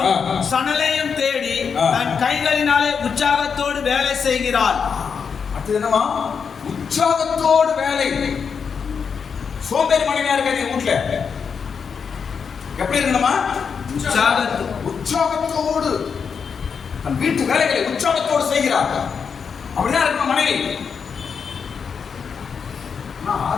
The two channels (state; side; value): quieter; right; 6.2 dB